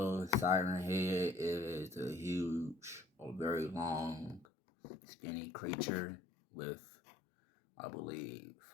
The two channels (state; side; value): drops out; right; at 4.5 s